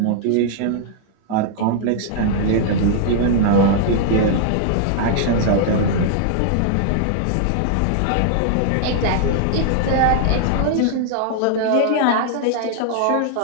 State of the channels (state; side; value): different; both; correlation -0.01